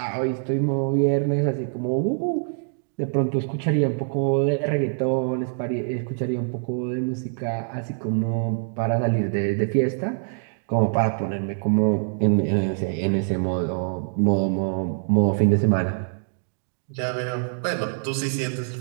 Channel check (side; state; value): left; silent; digital silence